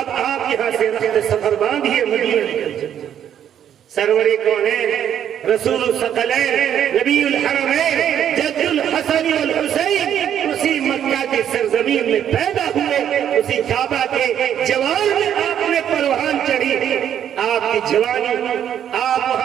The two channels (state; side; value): quieter; left; 9.7 dB